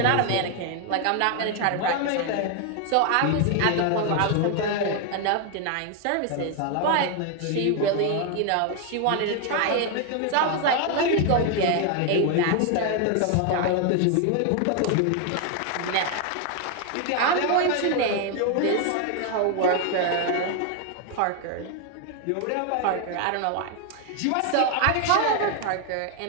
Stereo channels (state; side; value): different; both; correlation 0.01